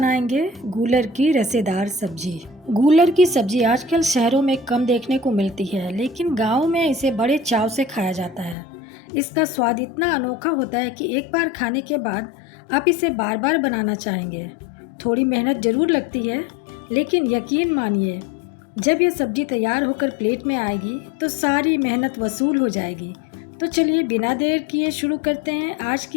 गूलर की रसेदार सब्जी। गूलर की सब्जी आजकल शहरों में कम देखने को मिलती है, लेकिन गाँव में इसे बड़े चाव से खाया जाता है। इसका स्वाद इतना अनोखा होता है कि एक बार खाने के बाद आप इसे बार बार बनाना चाहेंगे। थोड़ी मेहनत ज़रूर लगती है, लेकिन यकीन मानिए जब यह सब्ज़ी तैयार होकर प्लेट में आएगी तो सारी मेहनत वसूल हो जाएगी। तो चलिए बिना देर किए शुरू करते हैं आज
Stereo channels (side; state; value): right; drops out; at 8.6 s